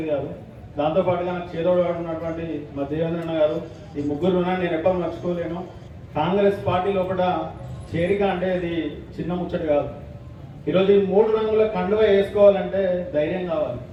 కాదు. దాంతోపాటుగా నాకు చేదోడు ఉన్నటువంటి మా దేవేంద్రన్న గారు, ఈ 3 ఉన్నాను నేను ఎప్పుడు మర్చిపోలేను. కాంగ్రెస్ పార్టీ లోపల చేరిక అంటే ఇది చిన్న ముచ్చట కాదు. ఈరోజు ఈ 3 రంగుల కండువ వేసుకోవాలంటే ధైర్యం కావాలి,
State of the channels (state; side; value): identical; both; correlation 1.00